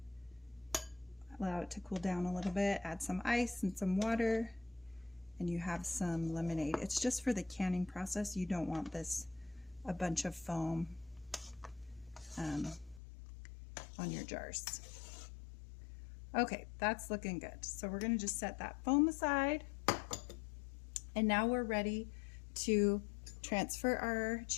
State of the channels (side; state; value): right; drops out; at 13.0 s